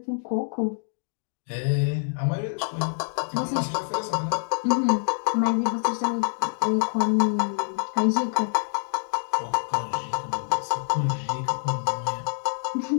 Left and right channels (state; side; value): silent; right; digital silence